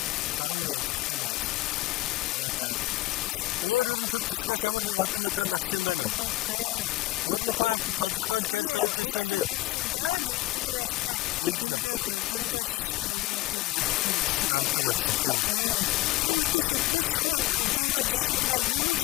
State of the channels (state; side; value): quieter; right; 17.0 dB